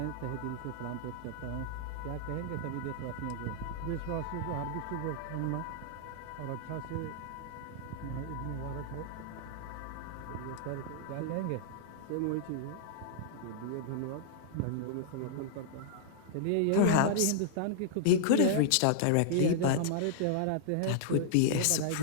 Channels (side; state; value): both; different; correlation -0.01